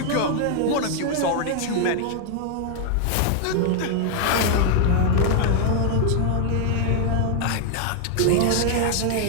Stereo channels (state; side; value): different; both; correlation 0.00